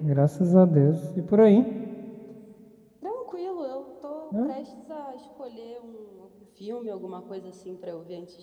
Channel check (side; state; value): both; identical; correlation 1.00